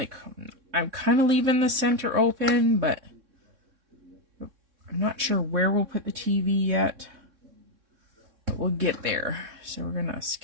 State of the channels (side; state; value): left; late; 3.6 ms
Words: I'm kind of leaving the center open, but I'm not sure where we'll put the TV yet. But we'll get there. So we're going to